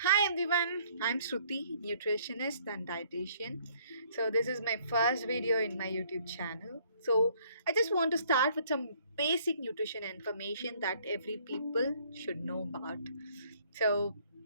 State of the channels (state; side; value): inverted; both; correlation -0.62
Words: Hi everyone, I'm Sruthi, nutritionist and dietitian. So this is my first video in my YouTube channel. So I just want to start with some basic nutrition information that every people should know about. So